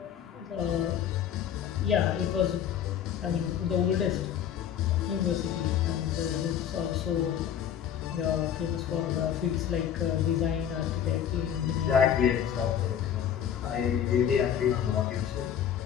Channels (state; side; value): quieter; right; 9.3 dB